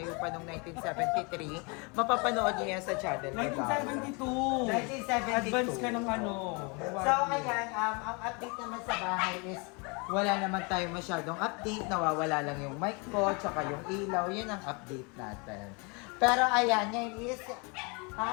pa noong 1973, mapapanood nyo yan sa channel ni Darla. 1972. 1972. Advance ka ng ano. So, ayan, ang update naman sa bahay is wala naman tayo masyadong update. Nawawala lang yung mic ko, tsaka yung ilaw. Yun ang update natin. Pero ayan, ngayon is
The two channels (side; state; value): right; quieter; 31.2 dB